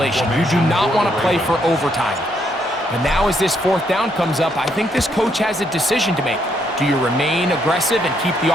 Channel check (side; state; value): both; normal; correlation 0.74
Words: You do not want to play for overtime. But now as this 4th down comes up, I think this coach has a decision to make. Do you remain aggressive and keep the